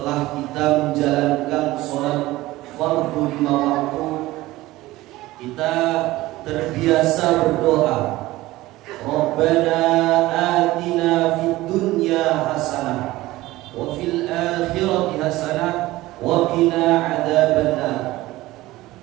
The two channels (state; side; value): quieter; left; 17.9 dB